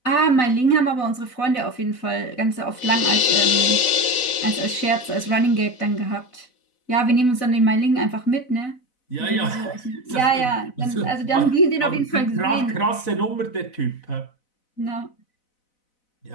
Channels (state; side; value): late; right; 4.0 ms